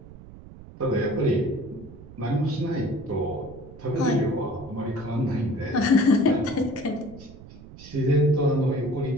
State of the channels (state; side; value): noise; right; rumble, 18 dB below the sound